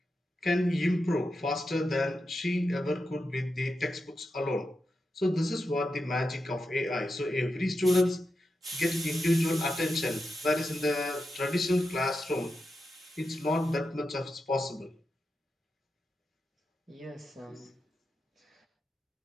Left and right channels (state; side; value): normal; both; correlation 0.88